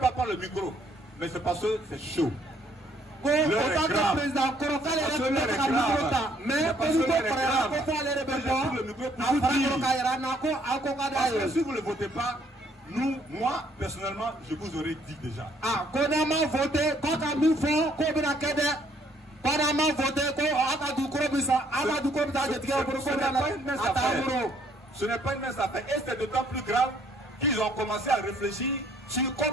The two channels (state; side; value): normal; both; correlation 0.65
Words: prendre le micro, mais c'est parce que c'est chaud. Si vous ne votez pas, moi, personnellement, je vous aurais dit déjà. Ce n'est pas une mince affaire. Et c'est d'autant plus grave qu'ils ont commencé à réfléchir sur